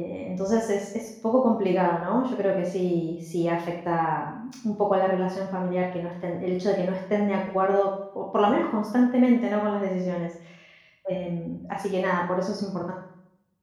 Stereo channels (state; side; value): identical; both; correlation 1.00